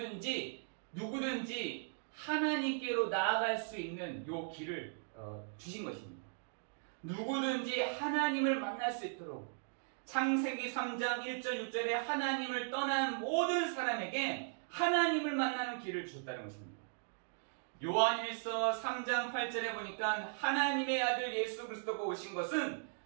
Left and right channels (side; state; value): left; silent; digital silence